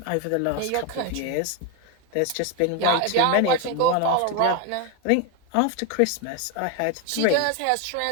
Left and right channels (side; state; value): both; different; correlation 0.02